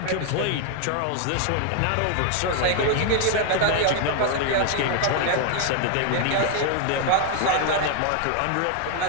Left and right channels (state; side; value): different; both; correlation 0.00